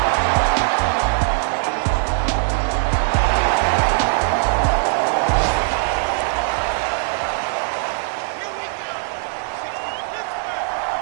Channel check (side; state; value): left; silent; digital silence